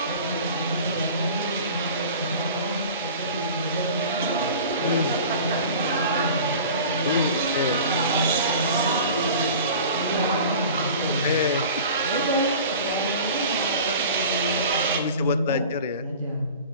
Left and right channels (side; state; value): both; inverted; correlation -0.40